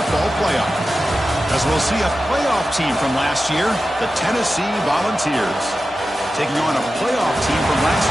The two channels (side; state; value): both; normal; correlation 0.93